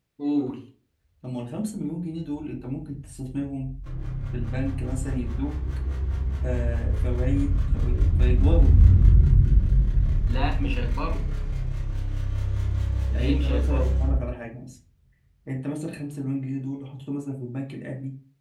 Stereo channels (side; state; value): both; identical; correlation 1.00